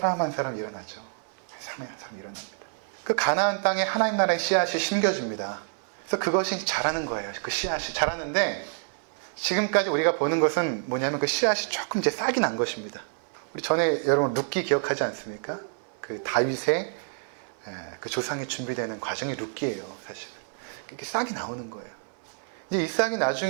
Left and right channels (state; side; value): silent; left; 59 dB below the other